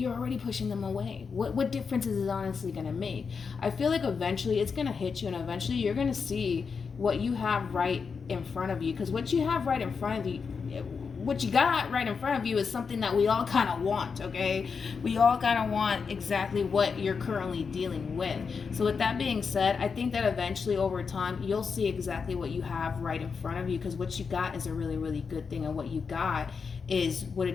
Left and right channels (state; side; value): quieter; right; 5.5 dB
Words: already pushing them away. What difference is it honestly going to make? I feel like eventually it's going to hit you, and eventually you're going to see what you have right in front of you. Because what you have right in front of you, what you got right in front of you is something that we all kind of want, okay? We all kind of want exactly what you're currently dealing with. So with that being said, I think that eventually over time, you'll see exactly what you have right in front of you, because what you got is a really, really good thing. And what you got is what it